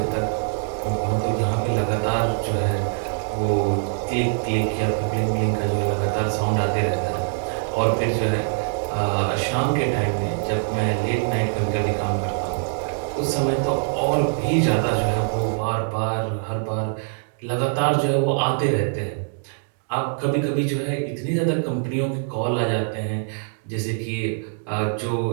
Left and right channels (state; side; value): silent; left; digital silence